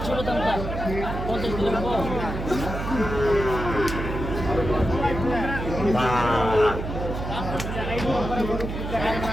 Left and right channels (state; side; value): noise; right; hum, 5 dB below the sound